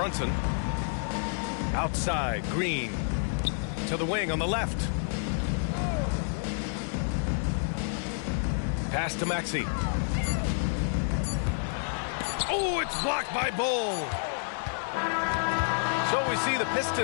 Outside, Green. To the wing on the left. Pass to Maxey. Oh, it's blocked by Bull. So we see the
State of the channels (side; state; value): right; silent; digital silence